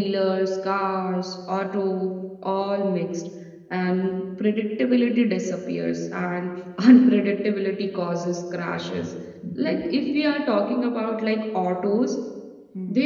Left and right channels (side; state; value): both; identical; correlation 1.00